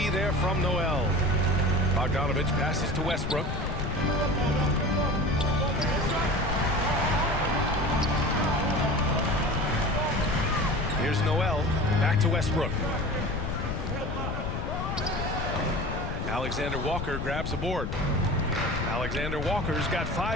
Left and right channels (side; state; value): left; noise; rumble, 3 dB below the sound